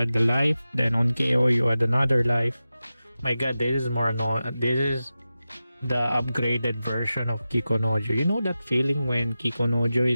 the life. Then on KO, you add another life. My god, this is more annoying. This is the upgraded version of Kikonojo. You know that feeling when Kikonojo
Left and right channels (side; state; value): both; inverted; correlation -0.94